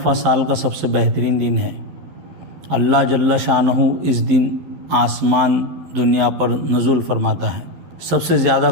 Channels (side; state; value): left; late; 12 ms